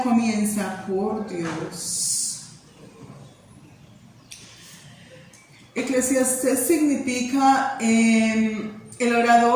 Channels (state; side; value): identical; both; correlation 1.00